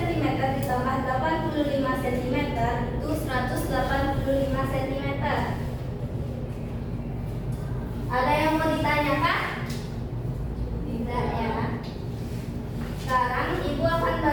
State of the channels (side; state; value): both; identical; correlation 1.00